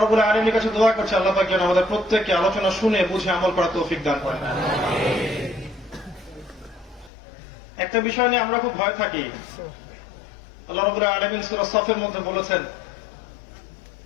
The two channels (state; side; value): drops out; right; at 7.1 s